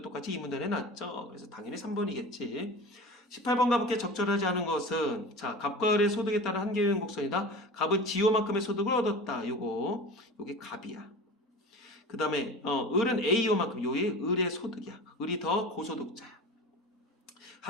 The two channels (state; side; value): normal; both; correlation 0.34